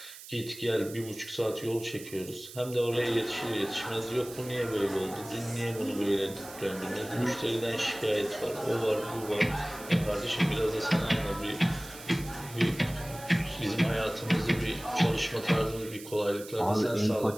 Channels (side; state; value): right; noise; hiss, 15 dB below the sound